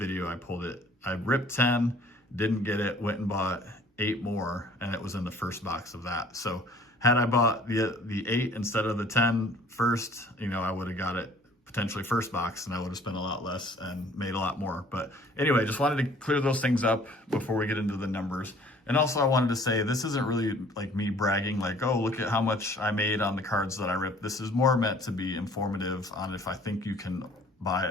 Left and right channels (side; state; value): both; normal; correlation 0.54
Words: I ripped 10, didn't get it, went and bought 8 more, and it was in the 1st box of that. So had I bought the 8 instead of the 10 first, I would have got it potentially 1st box, and I would have spent a lot less and made a lot more. But anyway, just wanted to clear those things up before we get into the numbers. And also I wanted to say, this isn't really like me bragging, like, oh, look at how much I made on the cards that I ripped. This is more meant to be informative on if I think you can buy